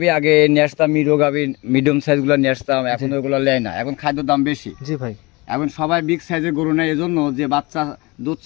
আগে নিয়ে আসতাম, মিরো গাভী মিডিয়াম সাইজ গুলো নিয়ে আসতাম, এখন ওইগুলো নেয় না, এখন খাদ্যের দাম বেশি। জি ভাই। এখন সবাই বিগ সাইজের গরু নেয়, এজন্য যে বাচ্চা দুধ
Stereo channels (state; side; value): quieter; right; 24.6 dB